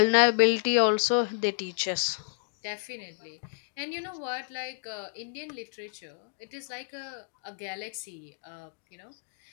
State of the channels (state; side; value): silent; right; digital silence